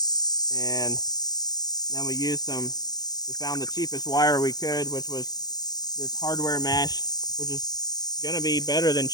And then we found the cheapest wire we could, which was this hardware mesh, which is gonna be better than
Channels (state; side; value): late; right; 0.19 ms